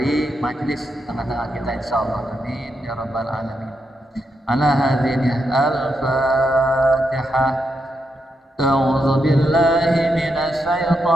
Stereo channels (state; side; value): normal; both; correlation 0.83